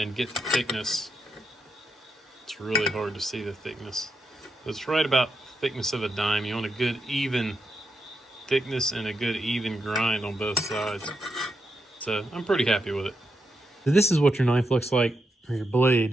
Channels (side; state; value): both; normal; correlation 0.84